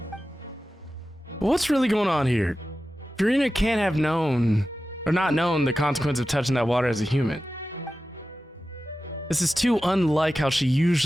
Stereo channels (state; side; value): normal; both; correlation 0.93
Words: What's really going on here? Furina can't have known, or not known, the consequence of touching that water as a human. This is too unlike how she